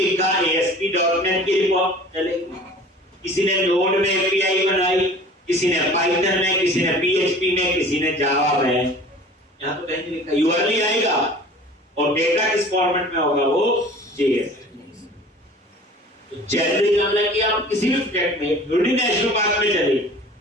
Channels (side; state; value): both; normal; correlation 0.45